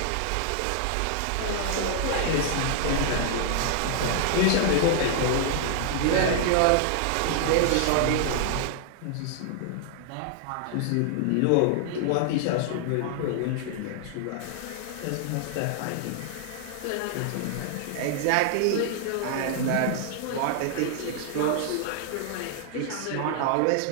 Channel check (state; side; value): different; both; correlation 0.00